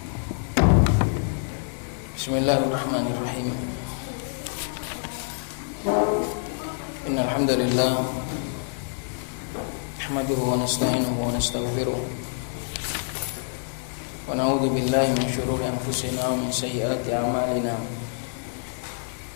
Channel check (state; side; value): silent; right; 61 dB below the other